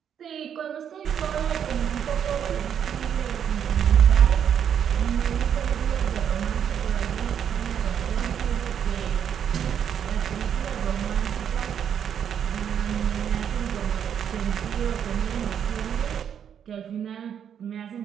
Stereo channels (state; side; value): quieter; left; 8.6 dB